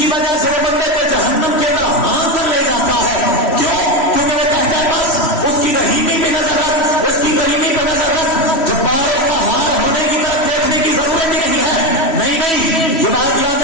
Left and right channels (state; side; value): late; right; 3.1 ms